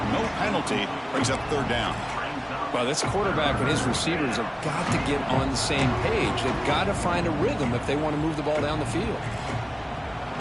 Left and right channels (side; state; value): both; identical; correlation 1.00